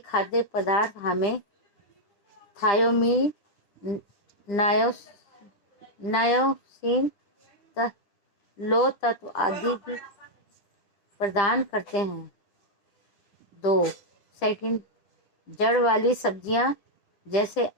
पदार्थ हमें थायोमीन, नायोसिन, लौह तत्व आदि भी प्रदान करते हैं। 2. सेकंड, जड़ वाली सब्जियां जैसे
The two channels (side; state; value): right; late; 10 ms